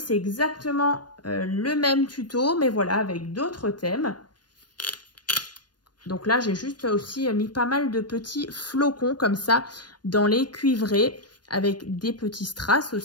exactement le même tuto, mais voilà, avec d'autres thèmes. Donc là, j'ai juste aussi mis pas mal de petits flocons comme ça dans les cuivrés avec des petits strass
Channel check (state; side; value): late; right; 0.70 ms